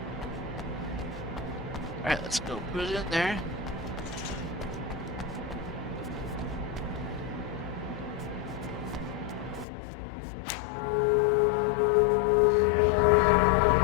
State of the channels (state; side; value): drops out; right; at 9.7 s